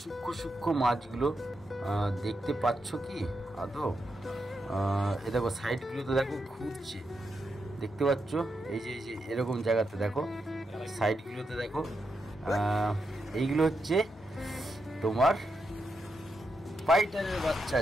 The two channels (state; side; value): normal; both; correlation 0.84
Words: সূক্ষ্ম সূক্ষ্ম মাছগুলো দেখতে পাচ্ছ কি আদৌ? এ দেখো সাইডগুলোতে দেখো ঘুরছে, দেখতে পাচ্ছ? এই যে এরকম জায়গাতে দেখো সাইডগুলোতে দেখো, এইগুলো হচ্ছে তোমার ফাইটারের বাচ্চা।